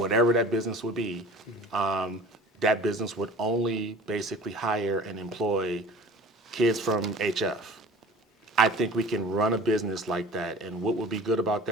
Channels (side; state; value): both; normal; correlation 0.43